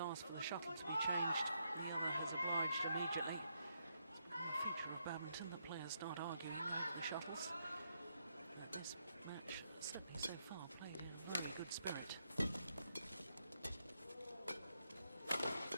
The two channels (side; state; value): both; inverted; correlation -0.79